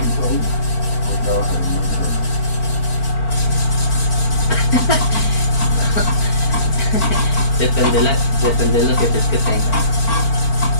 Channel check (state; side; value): late; right; 4.5 ms